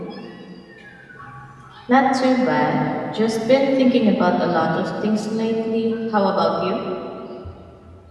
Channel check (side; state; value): both; identical; correlation 1.00